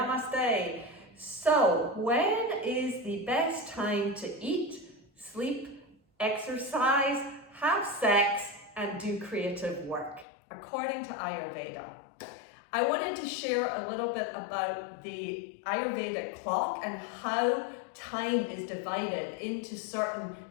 So, when is the best time to eat, sleep, exercise, have sex, and do creative work, according to Ayurveda? I wanted to share a little bit about the Ayurvedic clock and how time is divided into certain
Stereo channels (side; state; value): right; drops out; at 10.2 s